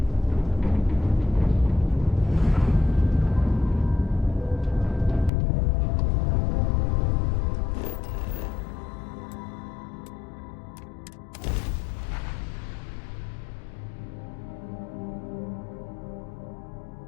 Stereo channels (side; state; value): right; drops out; at 5.3 s